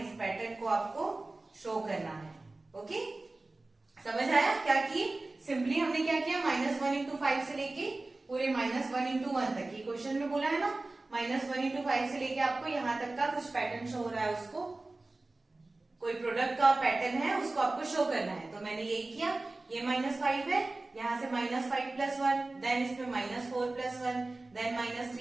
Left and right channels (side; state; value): left; quieter; 3.1 dB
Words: इस पैटर्न को आपको शो करना है। ओके, समझ आया क्या किए, सिंपली हमने क्या किया, -1 into 5 से लेके पूरे -1 into 1 तक, ये क्वेश्चन में बोला है ना, -1 इंटू 5 से लेके आपको यहाँ तक का कुछ पैटर्न शो हो रहा है, उसको कोई प्रोडक्ट का पैटर्न है उसको आपको शो करना है। तो मैंने यही किया, ये -5 है, यहाँ से -5 + 1, देन इसमें -4 + 1, देन